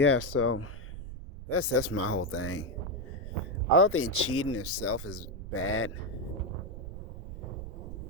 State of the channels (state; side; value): noise; right; rumble, 10 dB below the sound